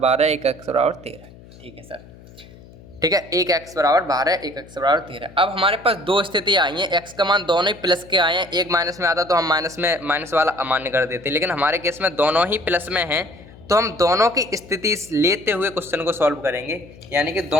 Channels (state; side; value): noise; left; hum, 21 dB below the sound